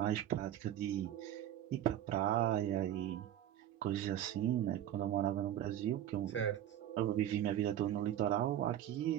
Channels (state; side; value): quieter; left; 11.6 dB